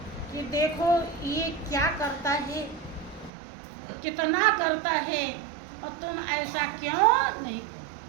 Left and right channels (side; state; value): left; drops out; at 3.3 s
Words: कि देखो ये क्या करता है, कितना करता है, और तुम ऐसा क्यों नहीं करते।